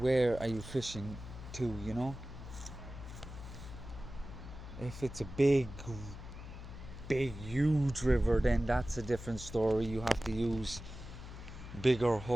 you fishing to, you know. If it's a big huge river, then that's a different story. You have to use bigger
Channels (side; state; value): left; noise; hum, 12 dB below the sound